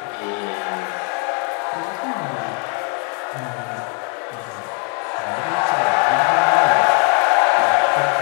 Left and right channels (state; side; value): quieter; right; 38.5 dB